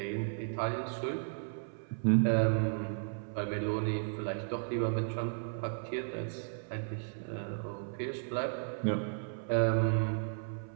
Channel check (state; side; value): silent; left; 55 dB below the other